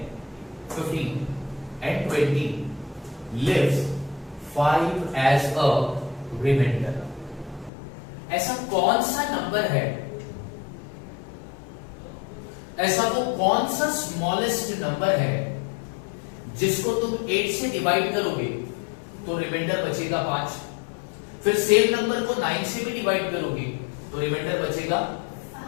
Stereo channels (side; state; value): right; drops out; at 7.7 s